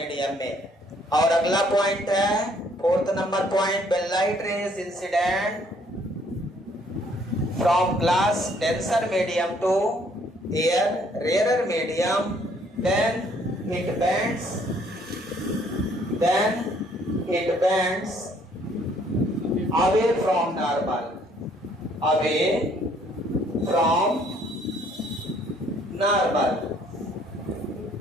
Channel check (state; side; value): normal; both; correlation 0.63